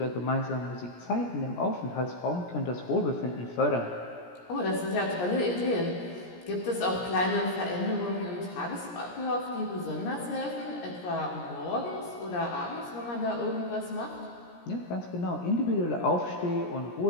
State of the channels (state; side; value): late; right; 17 ms